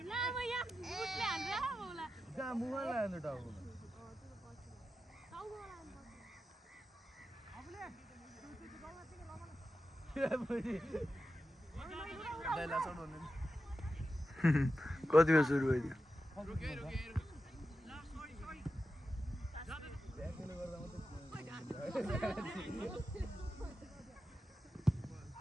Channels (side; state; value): both; normal; correlation 0.90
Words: कतिमा सुरु भइदियो